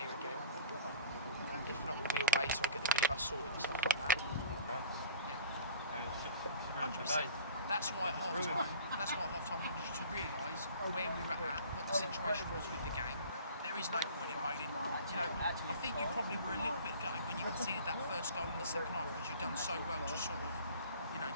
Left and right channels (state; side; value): inverted; both; correlation -0.43